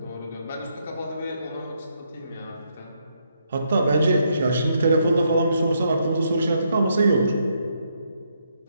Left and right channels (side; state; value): both; inverted; correlation -0.76